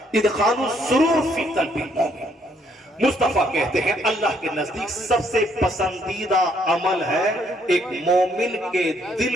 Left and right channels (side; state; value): both; normal; correlation 0.69